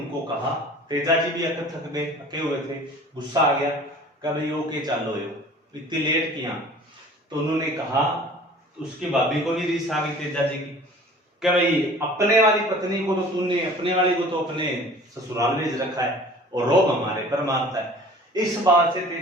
कहा, तेजा जी भी थक गए, थके हुए थे, गुस्सा आ गया, कभी ओके चलो यो इतनी लेट किया। तो उन्होंने कहा, तो उसकी भाभी को भी रीस आ गई तेजा जी की, कि भाई अपने वाली पत्नी को तो तूने, अपने वाली को तो अपने ससुराल भेज रखा है और रोब हमारे पर मारता है। इस बात से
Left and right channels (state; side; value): normal; both; correlation 0.45